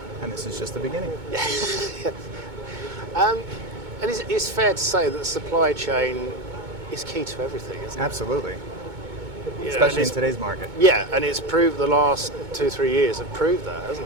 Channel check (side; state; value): left; late; 2.2 ms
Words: and this is just the beginning. And it's fair to say that the supply chain is key to everything, isn't it? Absolutely. Yeah, especially in today's market. Yeah, and it's proved the last 2-3 years have proved that,